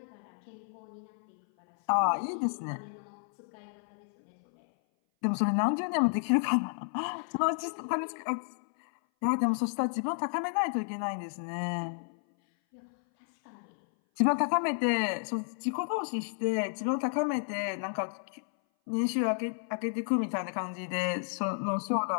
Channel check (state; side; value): silent; right; 57 dB below the other